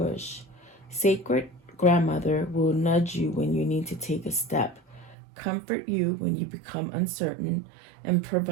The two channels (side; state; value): left; drops out; at 5.2 s